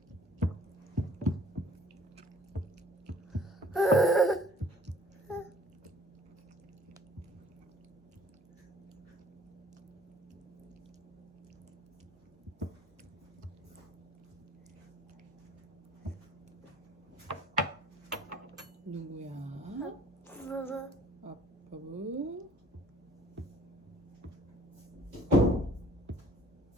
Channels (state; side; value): normal; both; correlation 0.55